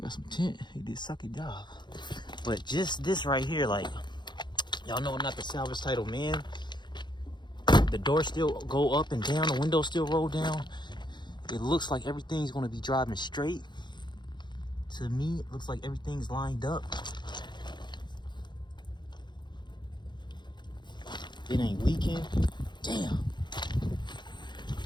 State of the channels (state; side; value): late; right; 0.22 ms